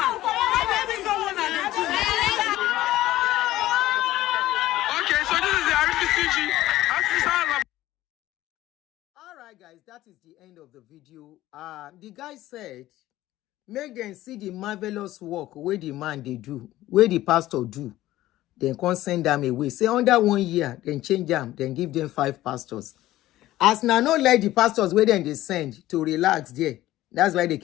Maybe someone at the two. Okay, so this is the Rccg. Alright guys, that is the end of the video. The guy said, make them see the marvelous work where the man they do, where the pastor do. Then can't send them away. Say under 1 year, then change them, then give them 5 pastors. As now not let the pastors where then they send to relax there. That's why they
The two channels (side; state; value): right; quieter; 15.4 dB